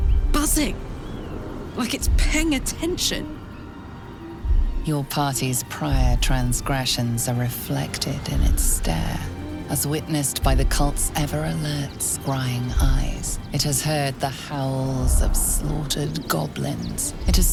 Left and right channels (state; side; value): identical; both; correlation 1.00